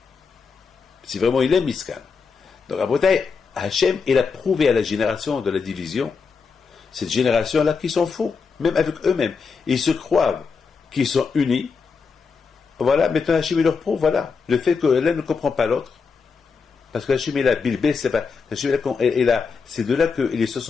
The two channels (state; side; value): quieter; right; 5.3 dB